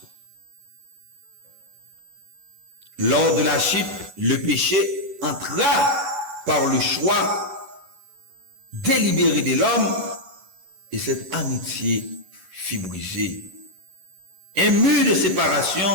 Lors de la chute, le péché entra par le choix délibéré de l'homme et cette amitié fut brisée. Un mur de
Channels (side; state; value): left; late; 11 ms